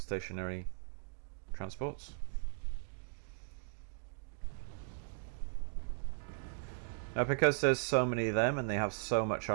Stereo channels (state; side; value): silent; left; digital silence